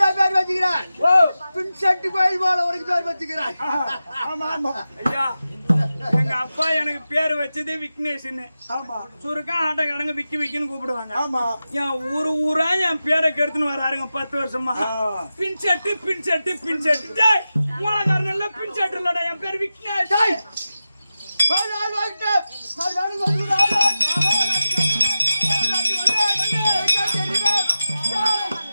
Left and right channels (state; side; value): inverted; both; correlation -0.93